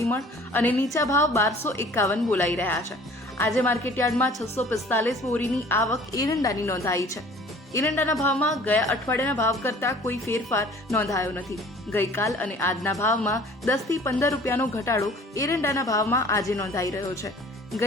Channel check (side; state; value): both; normal; correlation 0.50